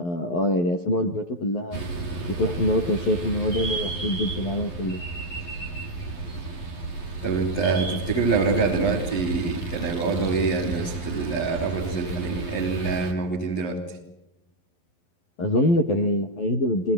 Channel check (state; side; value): late; right; 11 ms